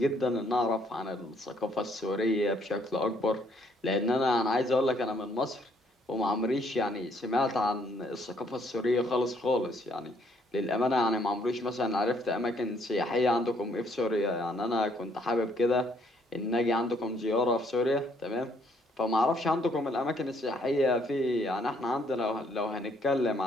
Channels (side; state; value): both; normal; correlation 0.67